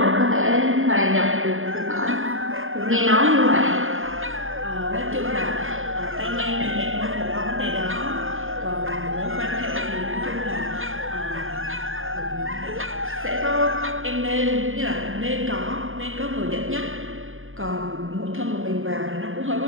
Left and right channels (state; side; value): late; left; 0.59 ms